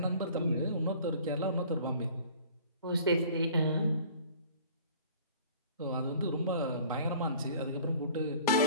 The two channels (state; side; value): inverted; both; correlation -0.49